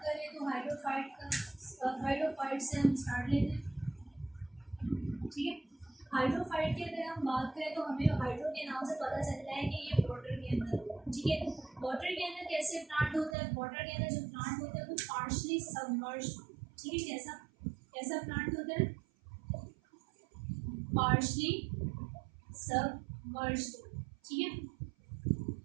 करें तो हाइड्रोफाइट से हम स्टार्ट लेते हैं। ठीक है, हाइड्रोफाइट की अगर हम बात करें तो हमें हाइड्रो के नाम से पता चलता है कि ये वाटर के अंदर होता है। ठीक है, वाटर के अंदर कैसे प्लांट होता है, वाटर के अंदर जो प्लांट होता है वो पार्शली सबमर्ज्ड। ठीक है, कैसा कैसा प्लांट होता है, पार्शली सबमर्ज्ड। ठीक है,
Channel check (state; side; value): drops out; left; at 13.4 s